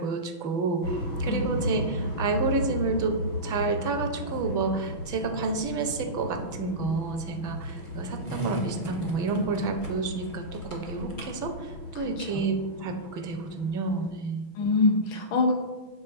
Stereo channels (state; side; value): late; right; 6.2 ms